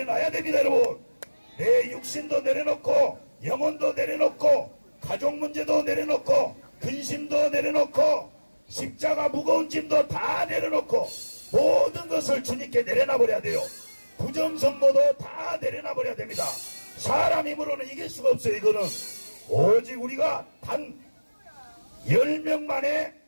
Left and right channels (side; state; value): both; inverted; correlation -1.00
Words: 됩니다. 여러분, 내 육신도 내려놓고 영혼도 내려놓고 가족 문제도 내려놓고 근심도 내려놓고 십자가 무거운 짐도 다 내려놓고 모든 것을 주님께 내려놔버려야 돼요. 부정선거도 다 내려놔버려야 됩니다. 사람 힘으로는 이길 수가 없어요. 이거는 오직 우리가 단 10명 만에